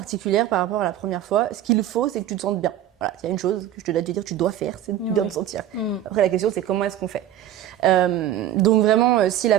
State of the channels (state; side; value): quieter; left; 11.6 dB